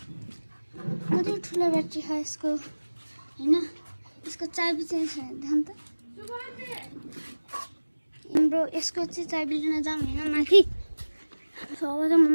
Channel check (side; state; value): both; inverted; correlation -1.00